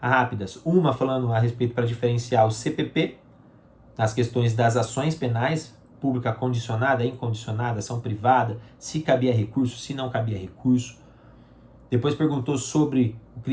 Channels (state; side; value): identical; both; correlation 1.00